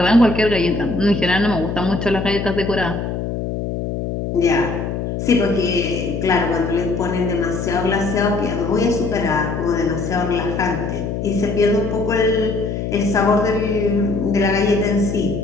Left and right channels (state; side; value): noise; left; hum, 4 dB below the sound